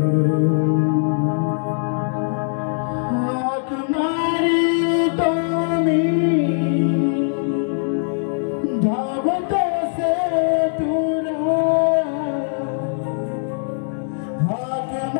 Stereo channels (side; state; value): right; silent; digital silence